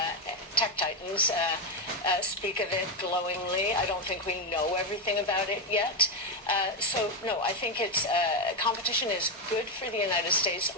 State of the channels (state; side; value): normal; both; correlation 0.07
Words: tech titans, speak of it glowingly. I don't think we know everything about it yet. So, no, I think competition is good for the United States.